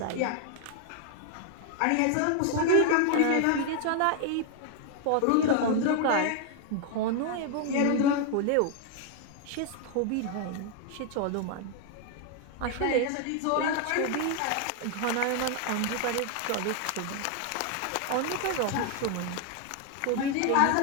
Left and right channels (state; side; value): different; both; correlation 0.00